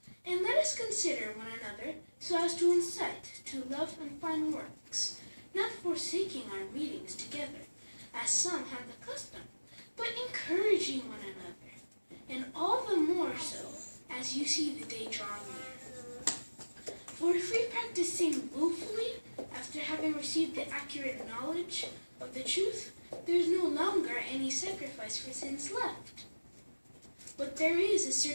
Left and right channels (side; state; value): both; inverted; correlation -1.00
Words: And let us consider one another so as to incite to love and fine works, not forsaking our meetings together, as some have the custom, but encouraging one another, and all the more so as you see the day drawing near. For if we practice sin willfully after having received the accurate knowledge of the truth, there is no longer any sacrifice for sins left. But there is a